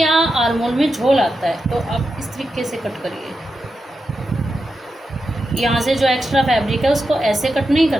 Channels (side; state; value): both; normal; correlation 0.88